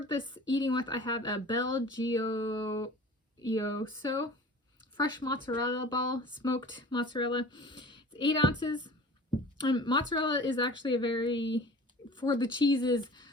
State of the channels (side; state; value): both; normal; correlation 0.41